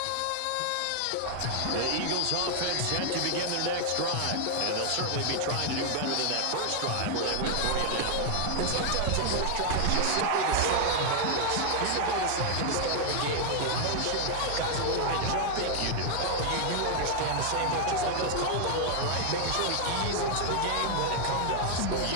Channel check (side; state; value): both; different; correlation 0.00